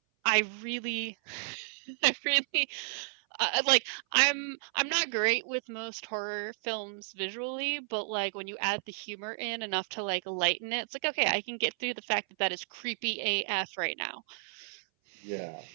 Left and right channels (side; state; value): left; silent; 56 dB below the other